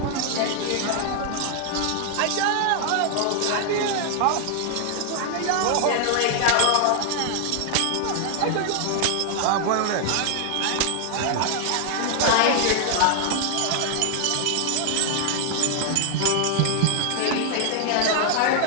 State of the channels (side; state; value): both; different; correlation 0.00